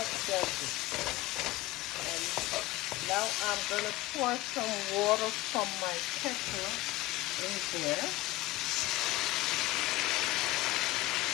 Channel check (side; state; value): right; quieter; 18.1 dB